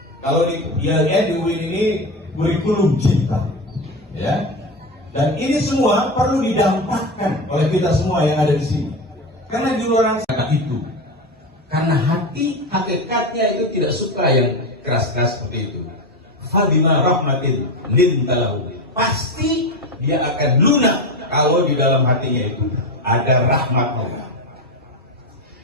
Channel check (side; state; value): both; normal; correlation 0.20